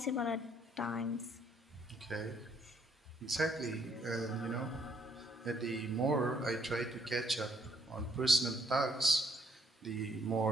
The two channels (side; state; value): both; normal; correlation 0.69